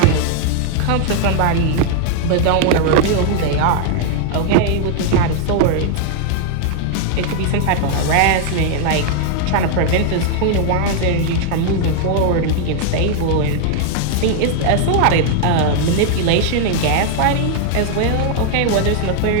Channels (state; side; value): different; both; correlation 0.00